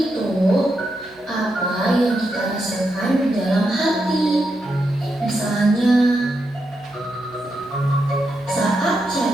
apa yang kita rasakan di dalam hati. Misalnya, saat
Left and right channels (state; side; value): noise; left; hum, 29 dB below the sound